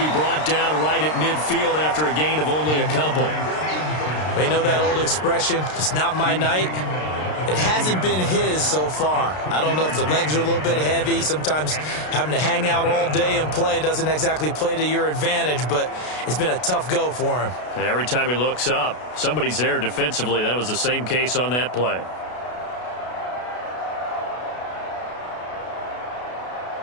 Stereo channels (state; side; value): late; right; 33 ms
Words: brought down right at midfield after a gain of only a couple. They know that old expression, it's not my night. It hasn't been his so far. I don't know if the legs are a little bit heavy. Sometimes having to hang out all day and play doesn't exactly play to your advantage, but it's been a tough go for him. And every time he looks up, somebody's there defensively. That was the same case on that play.